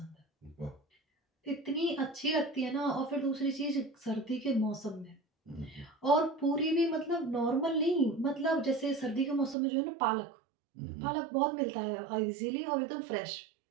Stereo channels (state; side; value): drops out; left; at 9.6 s